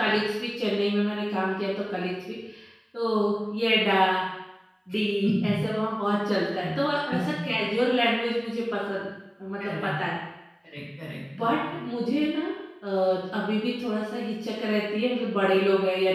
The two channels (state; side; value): identical; both; correlation 1.00